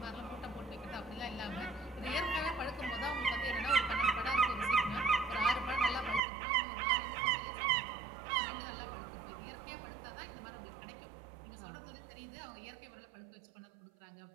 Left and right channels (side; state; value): left; drops out; at 6.2 s